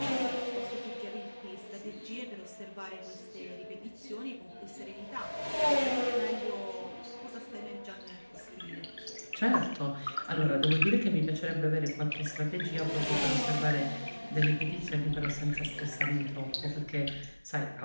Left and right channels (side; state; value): both; inverted; correlation -1.00